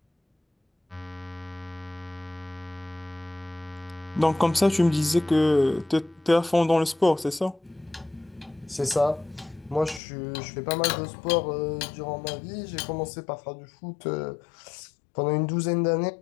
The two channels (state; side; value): drops out; right; at 10.0 s